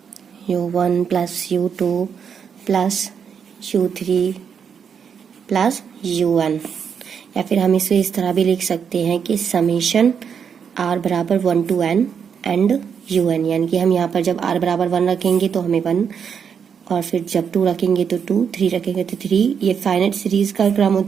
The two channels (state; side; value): quieter; left; 7.1 dB